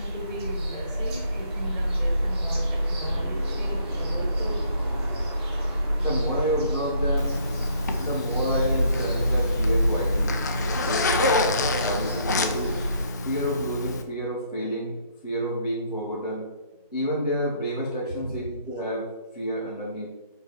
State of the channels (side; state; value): both; inverted; correlation -0.64